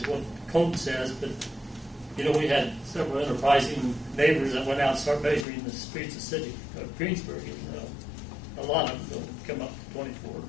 what code says, but we had several enterprising neighbors that went out and started measuring the streets of the city of Greensburg, and a lot of them come up to 24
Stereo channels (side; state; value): right; drops out; at 5.5 s